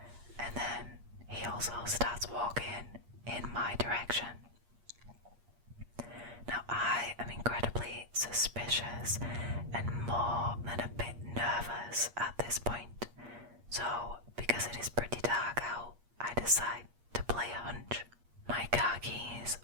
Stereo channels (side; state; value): left; late; 8.5 ms